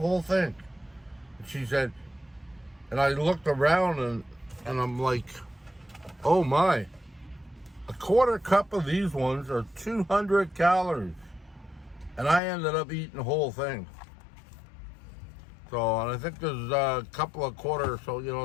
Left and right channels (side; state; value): right; drops out; at 12.4 s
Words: whole thing." And she said, and I looked around and I'm like, oh my, a quarter cup of these ones are 200 calories. And I ended up eating the whole thing. So, and I think there's a couple of quarters, so, you